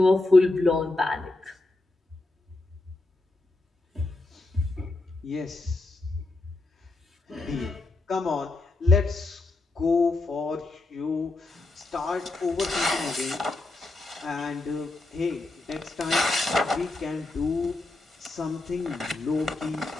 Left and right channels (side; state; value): right; quieter; 3.0 dB